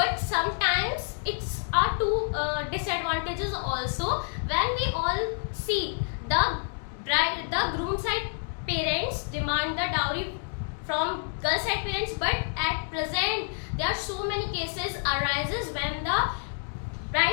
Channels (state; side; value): silent; right; 59 dB below the other